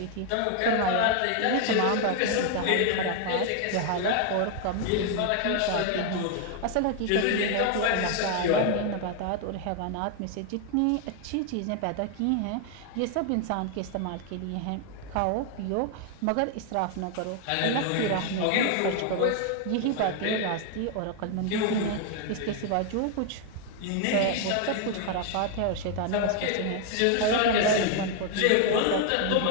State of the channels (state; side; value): different; both; correlation 0.00